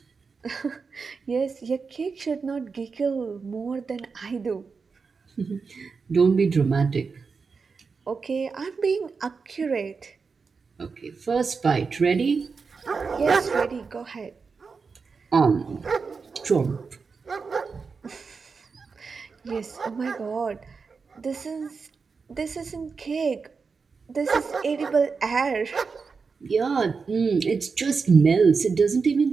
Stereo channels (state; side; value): quieter; left; 5.0 dB